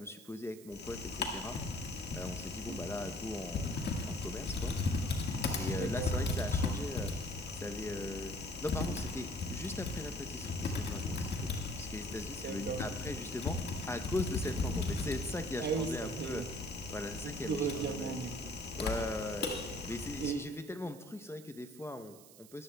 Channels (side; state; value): right; noise; hiss, 20 dB below the sound